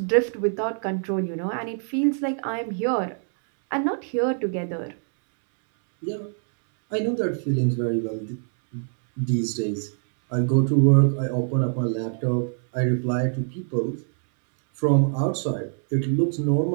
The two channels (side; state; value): left; silent; 61 dB below the other